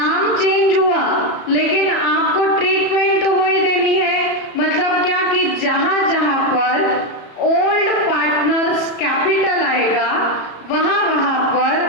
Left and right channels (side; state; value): right; late; 34 ms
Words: चेंज हुआ, लेकिन आपको ट्रीटमेंट तो वही देनी है। मतलब क्या कि जहां जहां पर ओल्ड पार्टनर्स कैपिटल आएगा, वहां वहां पर